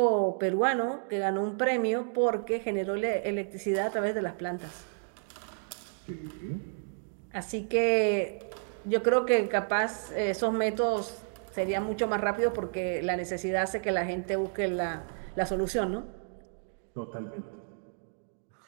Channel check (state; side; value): silent; left; digital silence